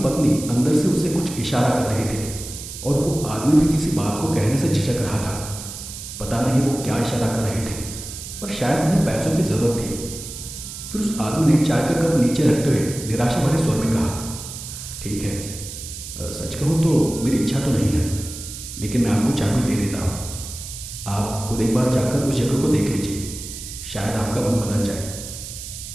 अंदर से उसे कुछ इशारा कर रही थी और वो आदमी भी किसी बात को कहने से झिझक रहा था। पता नहीं वो क्या इशारा कर रहे थे, पर शायद उन्हें पैसों की ज़रूरत थी। फिर उस आदमी ने चाय का कप नीचे रखते हुए निराशा भरे स्वर में कहा, ठीक है, सच कहूँ तो मेरी इच्छा तो नहीं है, लेकिन मैं आपको चाबी दे देता हूँ। आप खुद एक बार जाकर उस जगह को देख लीजिए, शायद आपका मन बदल जाए।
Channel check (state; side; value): noise; right; hiss, 10 dB below the sound